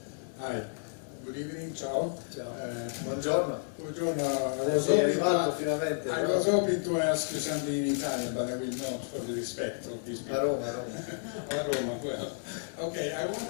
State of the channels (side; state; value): right; silent; digital silence